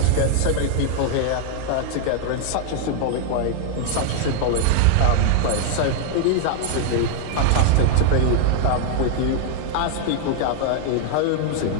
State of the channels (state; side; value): different; both; correlation 0.00